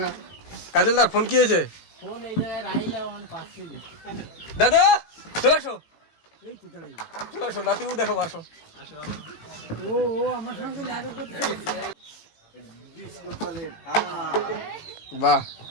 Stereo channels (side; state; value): right; late; 18 ms